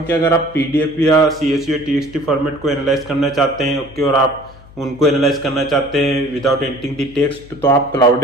कि अगर आप पीडीएफ या सीएसवी या टीएक्सटी फॉर्मेट को एनालाइज करना चाहते हैं, ओके, और आप उनको एनालाइज करना चाहते हैं विदाउट एंटरिंग द टेक्स्ट, तो आप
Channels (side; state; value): left; noise; hum, 22 dB below the sound